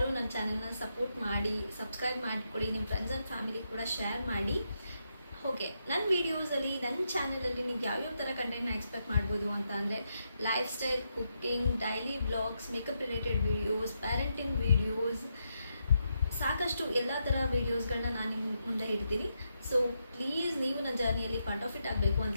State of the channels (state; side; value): inverted; both; correlation -0.83